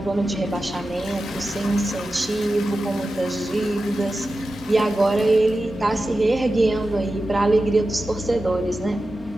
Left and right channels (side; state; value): both; normal; correlation 0.93